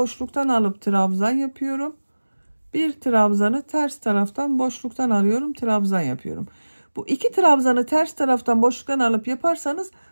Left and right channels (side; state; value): both; inverted; correlation -1.00